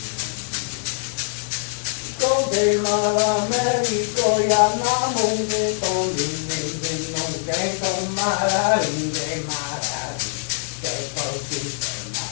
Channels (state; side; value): silent; right; digital silence